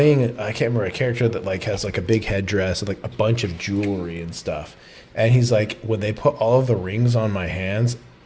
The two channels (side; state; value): both; identical; correlation 1.00